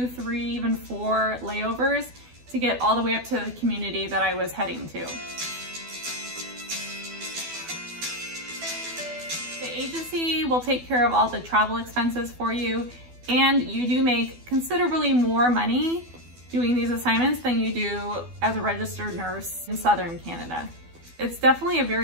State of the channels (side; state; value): left; late; 12 ms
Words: 3, even 4 layovers to get all the way up to the community that I was heading to. The agency will take care of all the travel expenses for you, and you do make considerably more money doing these assignments than you do as a registered nurse in Southern Canada. It's definitely a